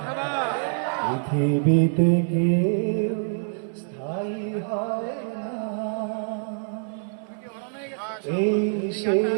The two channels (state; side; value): silent; left; digital silence